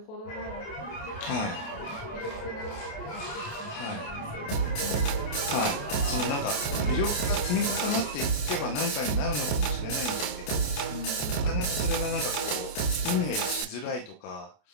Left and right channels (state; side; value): late; right; 28 ms